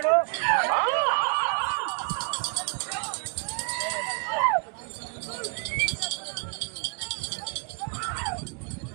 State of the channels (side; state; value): left; quieter; 39.4 dB